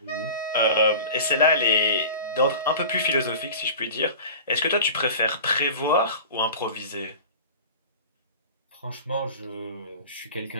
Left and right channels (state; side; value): inverted; both; correlation -0.36